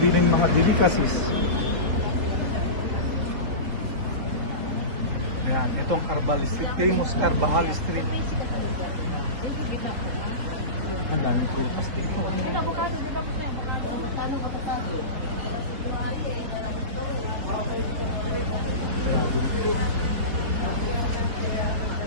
bilhin mga delicacies. Ayan, ito ang Carvajal Street, famous Carvajal Street. Ang daming prutas dito. Avocado, di ba? Avocado, avocado. Dragon fruit.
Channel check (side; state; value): left; late; 3.9 ms